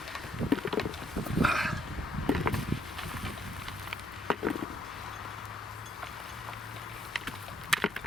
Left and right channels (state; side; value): normal; both; correlation 0.71